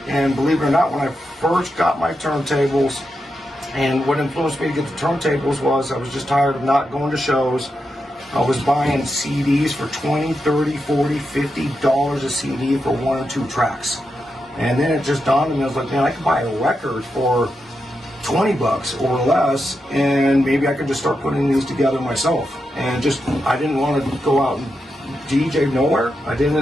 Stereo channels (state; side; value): normal; both; correlation 0.86